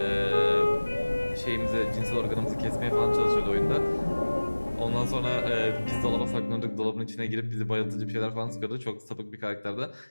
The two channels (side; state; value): both; inverted; correlation -1.00